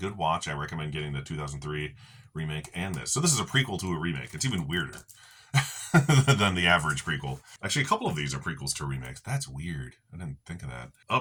watch. I recommend getting the 2003 remake and this. So this is a prequel to a remake. It's even weirder than the average prequel. Actually, a couple of these are prequels to remakes. That's weird. I didn't think of that.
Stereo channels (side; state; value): both; identical; correlation 1.00